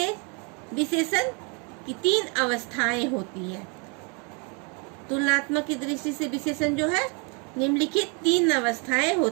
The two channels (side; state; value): left; quieter; 34.2 dB